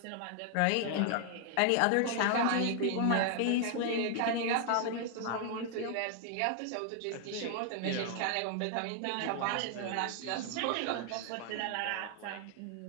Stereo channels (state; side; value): different; both; correlation 0.00